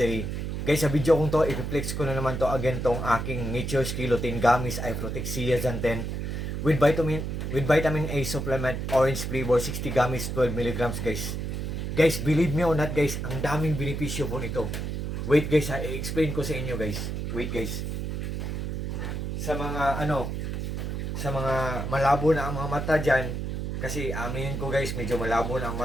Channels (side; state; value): right; noise; hum, 3 dB below the sound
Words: Guys, sa video kong to, i-flex ko na naman to again tong aking Nature's Kilotin Gummies I Protect Zeaxanthin with vitamin A supplement, orange flavor, 60 gummies, 12 milligrams guys. Guys, believe me or not guys, ang daming benepisyo po nito. Wait guys ha, i-explain ko sa inyo guys. Wait guys. Sa mga malabo na ang mga mata dyan, kasi aminin ko guys, medyo malabo na ang